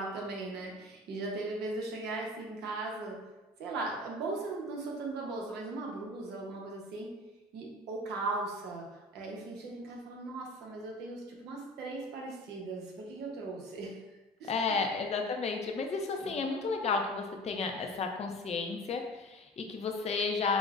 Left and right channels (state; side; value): normal; both; correlation 0.39